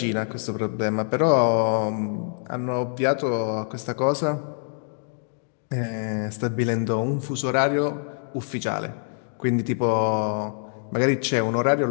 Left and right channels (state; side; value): silent; right; 58 dB below the other